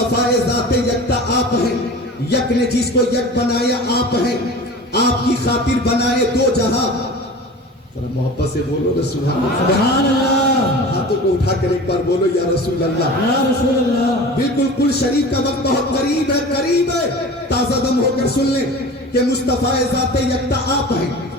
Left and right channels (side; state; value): both; normal; correlation 0.37